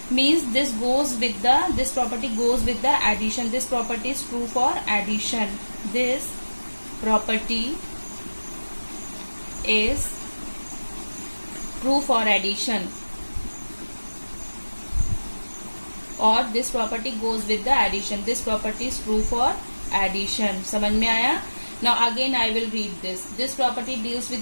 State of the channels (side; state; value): both; inverted; correlation -1.00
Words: Means this property goes with the addition. This property is true for addition. This property is true for addition, or this property goes with the addition. This property is true for addition. समझ में आया? Now again I will read this. This property deals